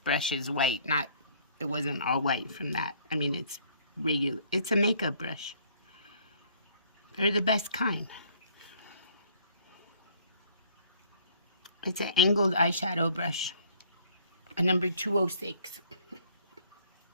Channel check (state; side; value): inverted; both; correlation -0.59